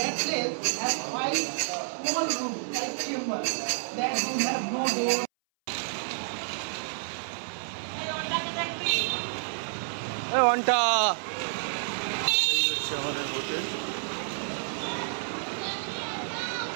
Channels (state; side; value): silent; left; 58 dB below the other